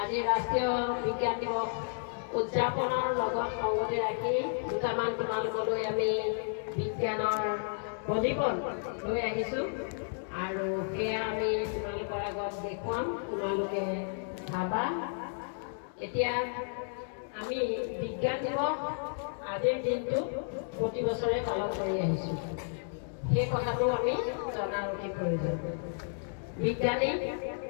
আজি ৰাষ্ট্ৰীয় বিজ্ঞান দিৱস উদযাপনৰ লগত সংগতি ৰাখি দুটামান তোমালোকলৈ আমি বিজ্ঞানৰ প্ৰদীপন লৈ আহিছোঁ আৰু সেয়া আমি তোমালোকৰ আগত দেখুৱাম, তোমালোকে চাবা। এতিয়া আমি বিজ্ঞান দিৱস আজিৰ দিনটো প্ৰতি বছৰে পালন কৰি আহিছোঁ, সেই কথাটো আমি জনাৰ অতি প্ৰয়োজন। বিজ্ঞানী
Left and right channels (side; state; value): right; silent; digital silence